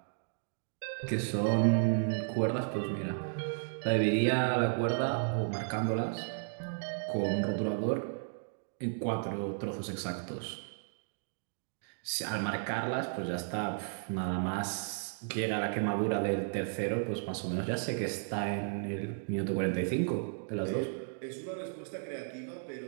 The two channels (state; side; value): silent; left; digital silence